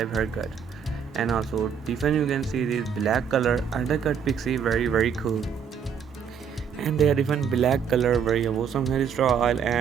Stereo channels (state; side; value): quieter; left; 7.2 dB